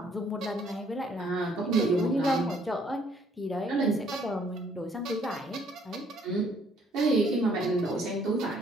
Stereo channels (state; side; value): normal; both; correlation 0.64